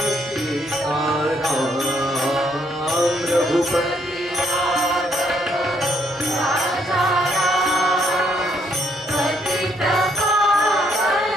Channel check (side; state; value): both; normal; correlation 0.70